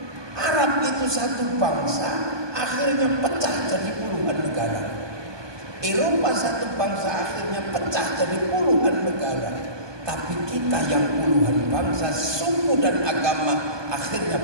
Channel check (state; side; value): late; left; 1.2 ms